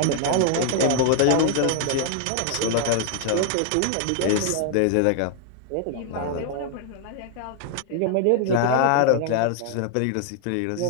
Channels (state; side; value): different; both; correlation 0.00